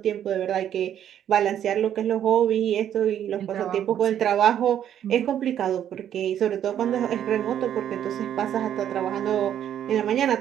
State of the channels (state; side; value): quieter; left; 10.2 dB